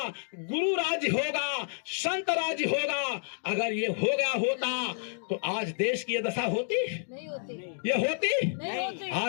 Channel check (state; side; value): silent; right; digital silence